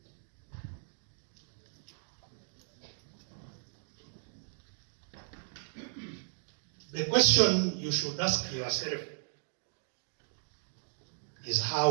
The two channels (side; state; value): left; silent; digital silence